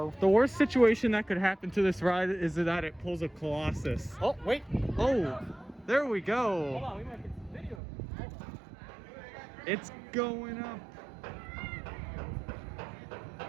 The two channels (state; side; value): drops out; left; at 7.8 s